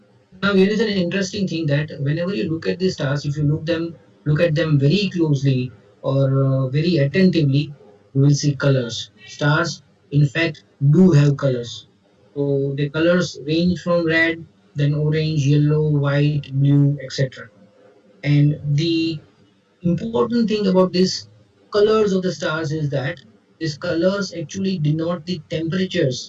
Now here is an interesting thing that whenever you look at the stars, if you look at them very closely or very attentively, you will see colors. Stars, in fact, do have colors. So the colors range from red then orange, yellow, white, blue, etc. And the important thing about these colors of the stars is that these colors actually denote the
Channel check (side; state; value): both; identical; correlation 1.00